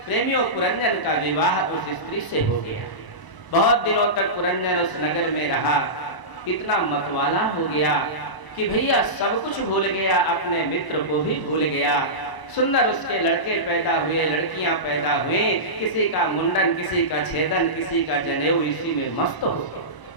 प्रेमियों, पुरंजन का विवाह उस स्त्री से हो गया। बहुत दिनों तक पुरंजन उस नगर में रहा। इतना मतवाला हो गया कि भैया सब कुछ भूल गया, अपने मित्र को भी भूल गया। सुंदर उसके लड़के पैदा हुए, लड़कियां पैदा हुई, किसी का मुंडन, किसी का छेदन, किसी का जनेऊ, इसी में मस्त हो गया,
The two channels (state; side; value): late; right; 1.0 ms